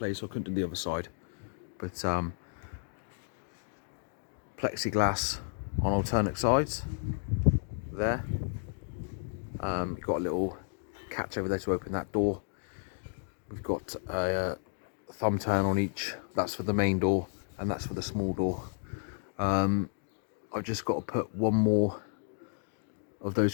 so I couldn't do the other side. But plexiglass on alternate sides there. You've got a little catch over there to open that door. We've got a thumb turn on each. That's for the main door, and that's for the small door. I've just got to put one more of those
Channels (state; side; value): silent; right; digital silence